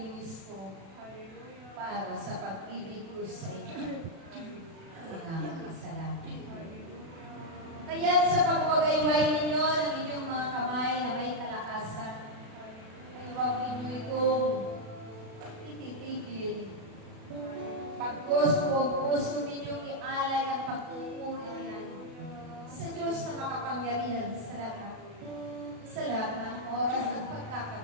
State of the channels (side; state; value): left; late; 36 ms